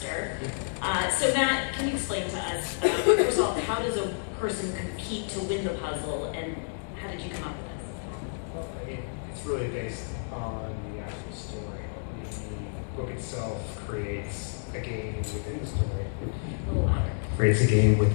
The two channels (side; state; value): right; silent; digital silence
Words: So Matt, can you explain to us, first of all, how does a person compete to win the puzzle, and how did you come up with this? Well, I mean, it's really based on the actual story. The book itself creates a game within the story. A little louder. Creates a game